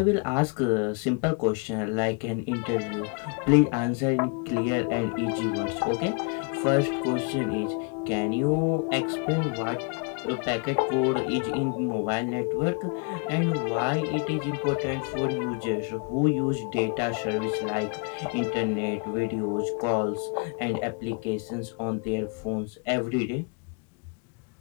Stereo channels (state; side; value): quieter; right; 34.7 dB